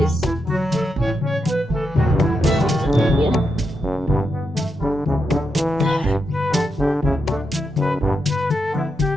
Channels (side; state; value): both; normal; correlation 0.85